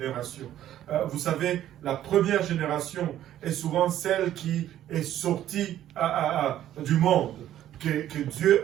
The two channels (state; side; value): quieter; left; 12.1 dB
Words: Vous savez, la première génération est souvent celle qui est sortie du monde, que Dieu